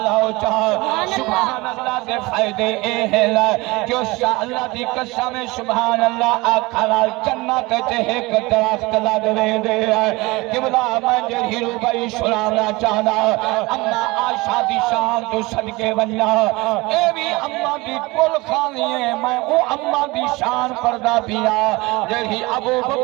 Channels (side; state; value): left; quieter; 22.7 dB